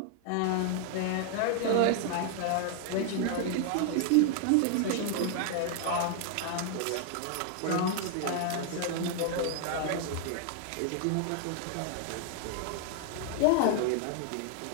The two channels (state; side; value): different; both; correlation 0.00